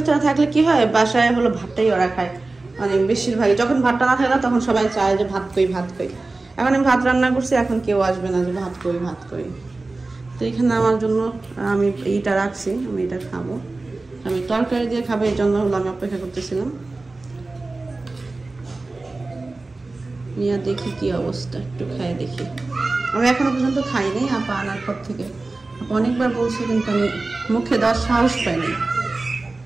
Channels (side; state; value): left; quieter; 3.3 dB